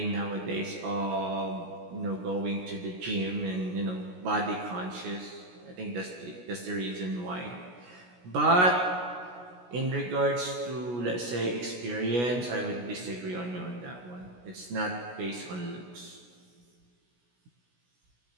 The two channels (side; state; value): left; late; 17 ms